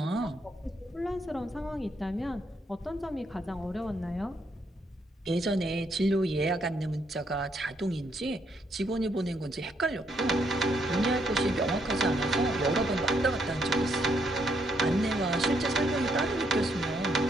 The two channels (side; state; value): both; normal; correlation 0.74